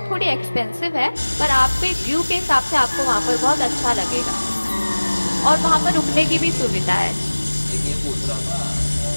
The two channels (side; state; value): both; inverted; correlation -1.00